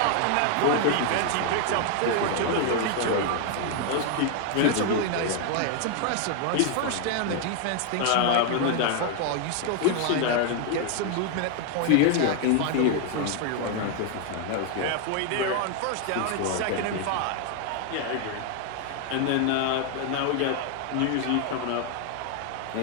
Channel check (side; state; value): both; different; correlation 0.00